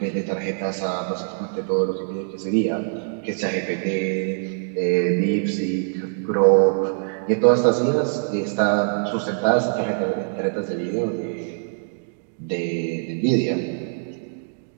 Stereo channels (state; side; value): silent; left; digital silence